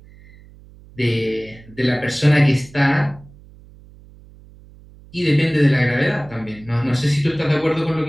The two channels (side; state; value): right; noise; hum, 23 dB below the sound